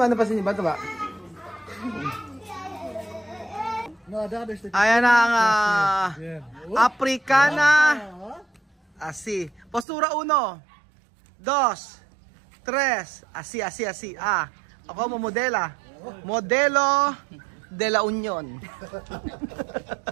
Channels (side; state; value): left; drops out; at 9.9 s